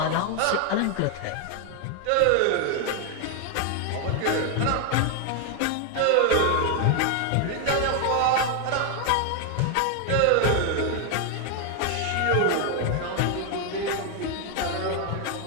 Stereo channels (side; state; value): both; different; correlation 0.01